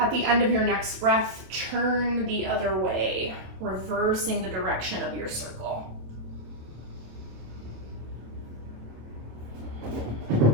the end of your next breath, turn the other way, reversing the direction of your circle.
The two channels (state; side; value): late; left; 26 ms